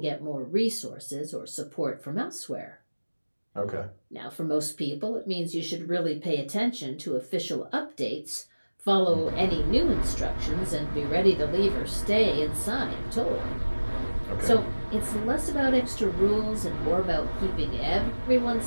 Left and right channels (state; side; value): inverted; both; correlation -1.00